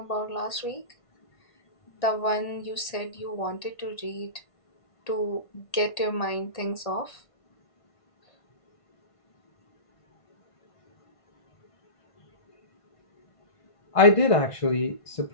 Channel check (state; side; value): late; right; 1.5 ms